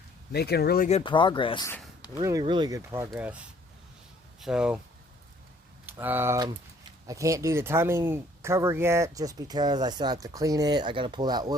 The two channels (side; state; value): both; normal; correlation 0.59